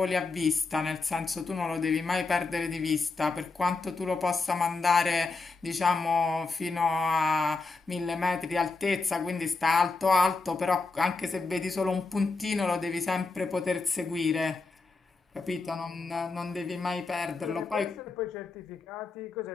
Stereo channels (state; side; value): quieter; right; 3.9 dB